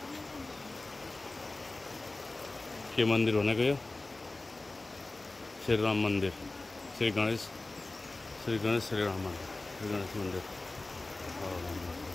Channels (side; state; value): right; quieter; 3.1 dB